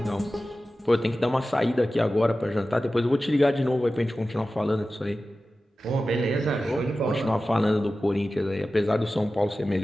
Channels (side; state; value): both; normal; correlation 0.95